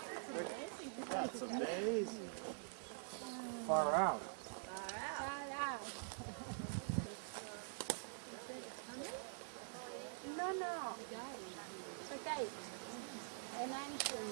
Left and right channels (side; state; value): left; silent; digital silence